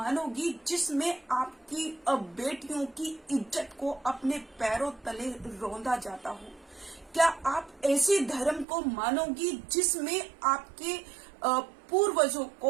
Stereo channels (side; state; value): left; drops out; at 8.7 s